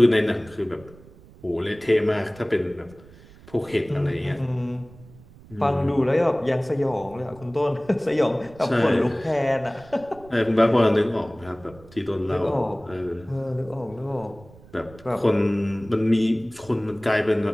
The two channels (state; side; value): noise; right; rumble, 22 dB below the sound